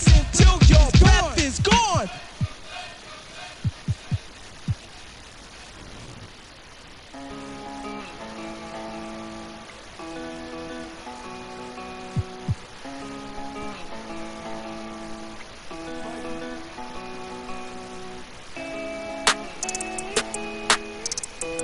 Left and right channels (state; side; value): identical; both; correlation 1.00